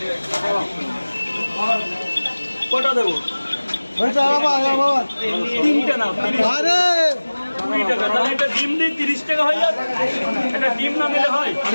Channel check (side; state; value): both; inverted; correlation -1.00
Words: কটা দেবো তিনটে না 20 টাকা তাহলে একটা ডিম দিই 30 টাকা হয়ে যাবে একটা ডিম না দিলে হয়